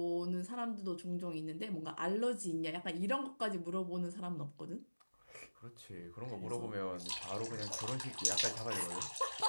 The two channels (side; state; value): both; inverted; correlation -1.00